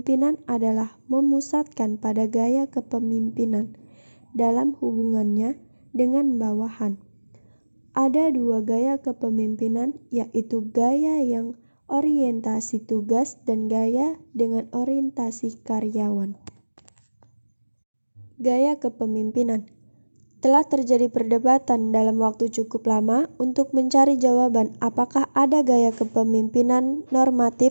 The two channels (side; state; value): both; inverted; correlation -1.00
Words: adalah memusatkan pada gaya kepemimpinan dalam hubungannya dengan bawahan. Ada dua gaya kepemimpinan, yaitu gaya yang orientasi tugas dan gaya dengan orientasi karyawan. Gaya kepemimpinan. Telah terjadi perdebatan dalam waktu cukup lama untuk mencari jawaban apakah ada gaya kepemimpinan